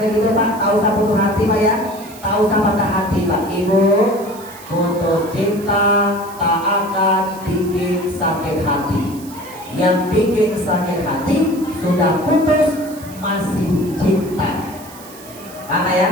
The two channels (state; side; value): noise; right; hiss, 19 dB below the sound